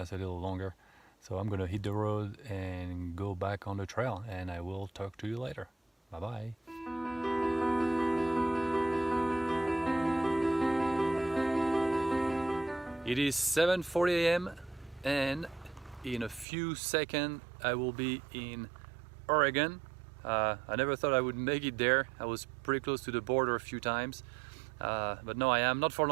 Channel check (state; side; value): drops out; left; at 16.4 s